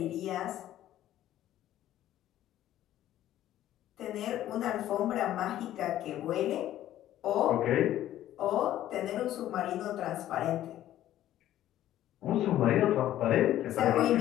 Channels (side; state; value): right; quieter; 13.0 dB